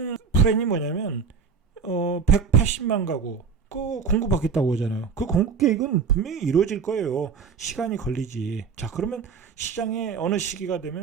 플랜이 뭐냐면 180만 가구 그 공급하겠다고 하잖아요. 그 공급 계획은 분명히 이루어질 거예요. 시간이 걸리지. 자, 그러면 시장에 어느 시기가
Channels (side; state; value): left; quieter; 5.9 dB